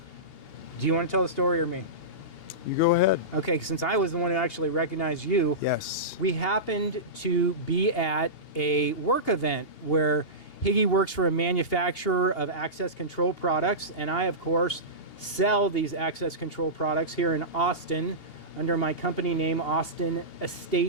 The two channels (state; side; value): late; right; 2.8 ms